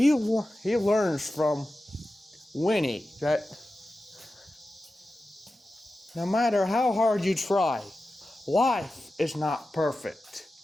learns from Winnie that no matter how hard you try, life is not perfect.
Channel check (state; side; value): normal; both; correlation 0.93